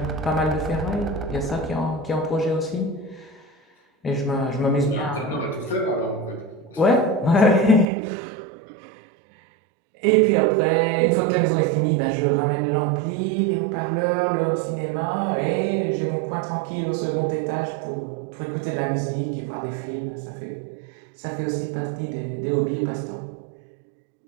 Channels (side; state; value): left; drops out; at 7.9 s